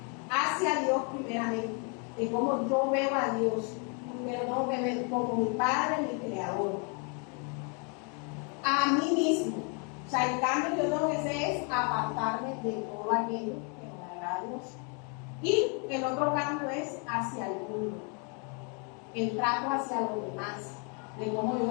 hacia Dios primeramente, de cómo yo veo a Dios, pero no me veo como mi Padre, mi Creador, a mí mismo. O sea, el cambio que yo tengo que hacer es apartarme de todo aquello que no me agrada a Dios. Y el otro cambio es hacia el mundo, el trato hacia los demás, de cómo yo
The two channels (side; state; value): right; quieter; 36.9 dB